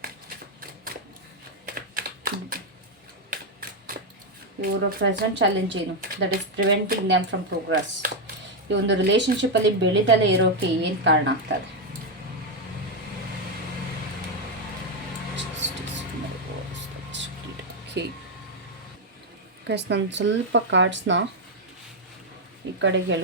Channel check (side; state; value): both; normal; correlation 0.03